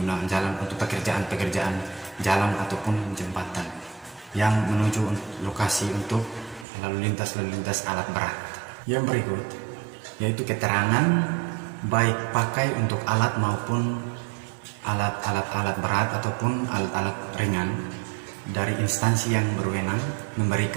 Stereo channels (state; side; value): drops out; left; at 6.7 s